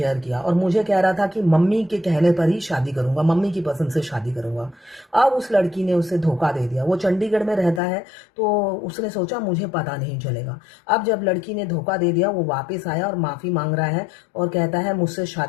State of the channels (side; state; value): right; drops out; at 7.8 s